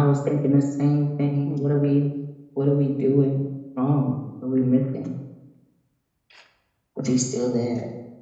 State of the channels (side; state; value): both; identical; correlation 1.00